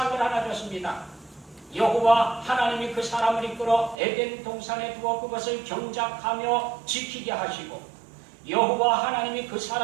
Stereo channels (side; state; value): left; drops out; at 4.0 s